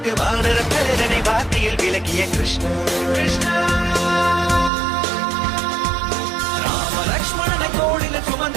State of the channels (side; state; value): left; drops out; at 4.7 s